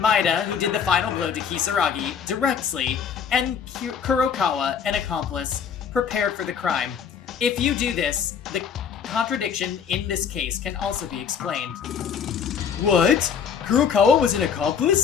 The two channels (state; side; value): quieter; right; 7.2 dB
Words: who did the final blow to Kisaragi, directly, and Kurokawa, an accomplice, prepared for the crime. If you do this, the contradiction in this case can also be explained. What? Kurokawa was an